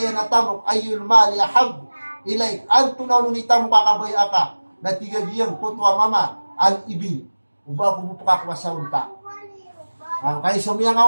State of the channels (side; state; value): both; inverted; correlation -1.00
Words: na tamok ayul mali ahab. Ilay, ang tunaw nunita mo kakabaya ka, na tigagiyang kutwa mama, al-ibi, uba kumupaka sa unta. Kaya sumiya nga